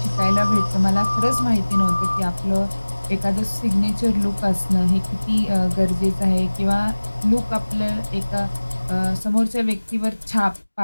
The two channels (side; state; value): both; inverted; correlation -1.00